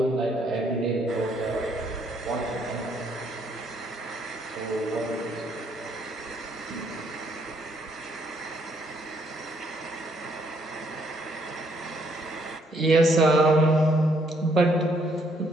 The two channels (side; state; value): both; normal; correlation 0.70